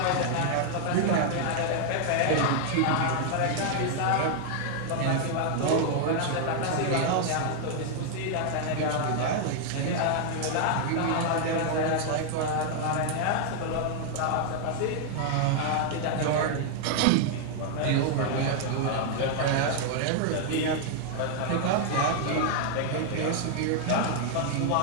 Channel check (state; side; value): different; both; correlation 0.00